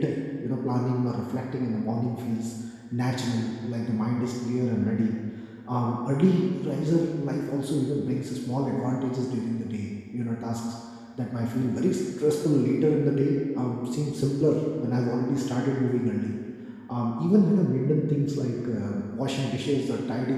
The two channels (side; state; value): both; identical; correlation 1.00